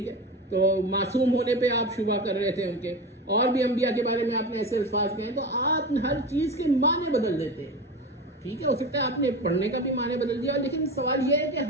ہے. تو معصوم ہونے پہ آپ شبہ کر رہے تھے ان کے. اور بھی انبیاء کے بارے میں آپ نے ایسے الفاظ کہے ہیں. تو آپ ہر چیز کے معنی بدل دیتے ہیں، ٹھیک ہے. ہو سکتا ہے آپ نے پڑھنے کا بھی معنی بدل دیا، لیکن سوال یہ ہے کہ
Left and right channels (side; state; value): both; normal; correlation 0.26